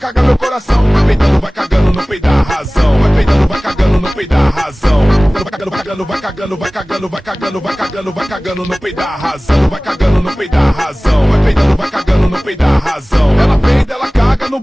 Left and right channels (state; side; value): normal; both; correlation 0.98